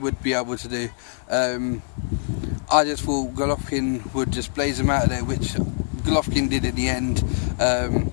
be able to do. I just thought Golovkin would just blaze him out of there, which Golovkin did in the end.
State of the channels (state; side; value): silent; right; 61 dB below the other